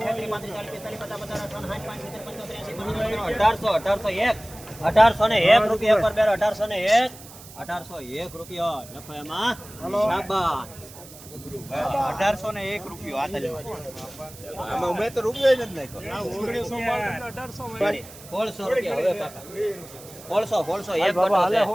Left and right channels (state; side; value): noise; right; hiss, 18 dB below the sound